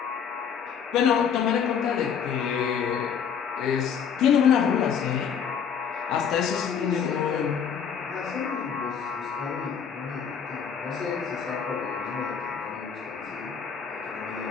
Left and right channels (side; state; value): right; quieter; 7.3 dB